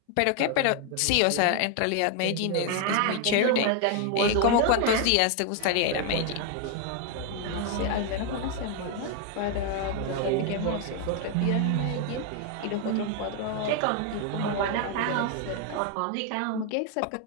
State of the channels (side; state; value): both; different; correlation 0.00